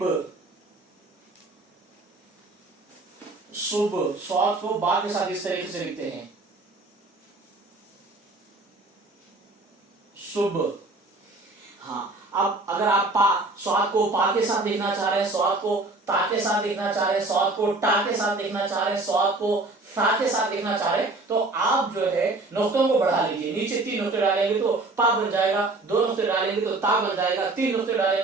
शुभ। स्वाद को बा के साथ इस तरीके से लिखते हैं, शुभ। हाँ, अब अगर आप स्वाद को पा के साथ लिखना चाह रहे हैं, स्वाद को ता के साथ लिखना चाह रहे हैं, स्वाद को टा के साथ लिखना चाह रहे हैं, स्वाद को फा के साथ लिखना चाह रहे हैं, तो आप जो है नुक्तों को बढ़ा लीजिए। नीचे तीन नुक्ते डालेंगे तो पा बन जाएगा, दो नुक्ते डालेंगे तो ता बन जाएगा, तीन नुक्ते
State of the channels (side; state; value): left; quieter; 3.2 dB